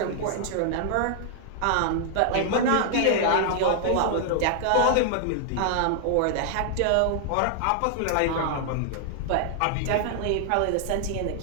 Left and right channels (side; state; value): both; different; correlation -0.01